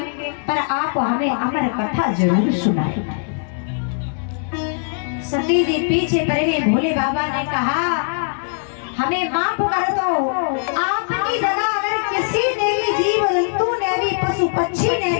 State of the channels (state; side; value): silent; right; digital silence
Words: पर आप हमें अमर कथा जरूर सुनाएं। सती जी पीछे पड़ गई। भोले बाबा ने कहा, हमें माफ कर दो, आपकी जगह अगर किसी ने भी, जीव जंतु ने भी, पशु पक्षी ने